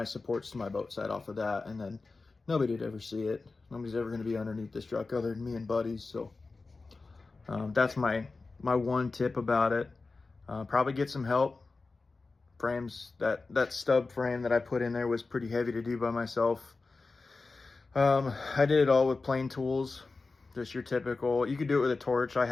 supports to my boat side off of that, and then nobody'd ever see it. Nobody's ever going to be underneath this truck other than me and buddies. So that's my one tip about it. Probably get some help. Frames, that stub frame that I put in there was pretty heavy to do by myself. I did it all with plain tools, just your typical. You could do it with a torch. I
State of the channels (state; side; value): quieter; right; 3.8 dB